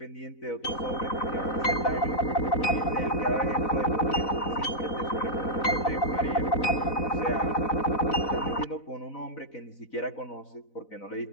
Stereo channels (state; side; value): late; right; 4.0 ms